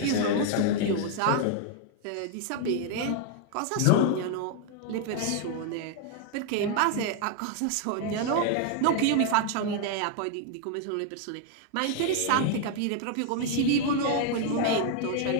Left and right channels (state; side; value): different; both; correlation 0.00